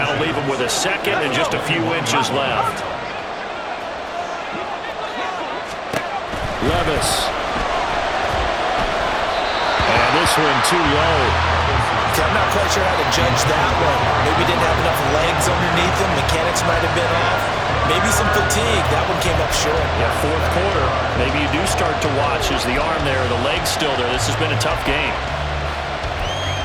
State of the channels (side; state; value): both; identical; correlation 1.00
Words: leave him with a second and just a few inches left. Levis. And this one too low. I'm not quite sure how to judge that one. Maybe didn't have enough legs underneath him. Mechanics might have been off. Maybe some fatigue. That one came up short. Yeah, 4th quarter. Maybe you do start to watch as the arm there, the leg's still there. This has been a tough game.